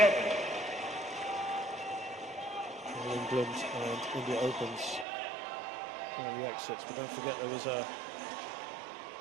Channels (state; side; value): drops out; left; at 5.1 s